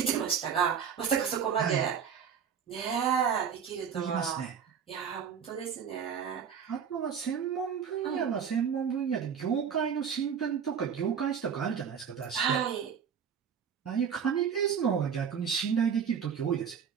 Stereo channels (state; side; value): quieter; left; 7.4 dB